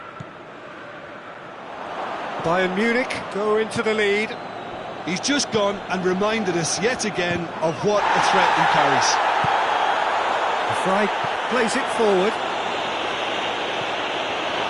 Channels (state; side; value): identical; both; correlation 1.00